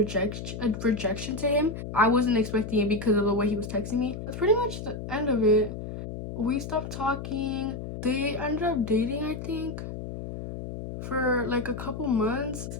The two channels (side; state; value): left; noise; hum, 8 dB below the sound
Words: to him. I wasn't expecting it because of the way he was texting me. That's pretty much the end of it. We stopped talking. They ended up dating, I think, for like a couple months,